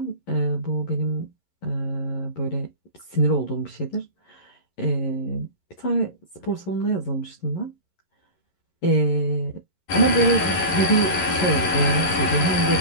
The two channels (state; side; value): late; right; 11 ms